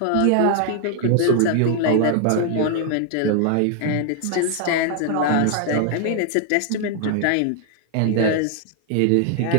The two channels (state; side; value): different; both; correlation 0.00